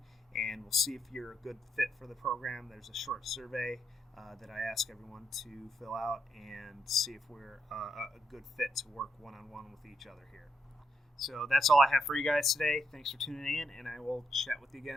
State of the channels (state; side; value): normal; both; correlation 0.79